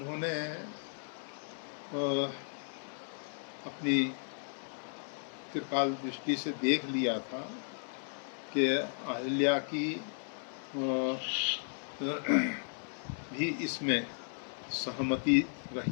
अपनी त्रिकाल दृष्टि से देख लिया था कि अहिल्या की भी इसमें सहमति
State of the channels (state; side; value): silent; right; 54 dB below the other